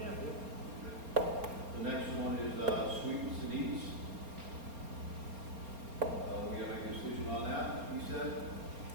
The next one is sweets and eats. We have a decision on that, he said.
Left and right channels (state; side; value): late; left; 4.3 ms